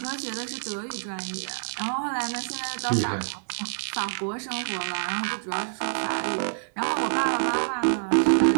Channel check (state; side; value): silent; left; 60 dB below the other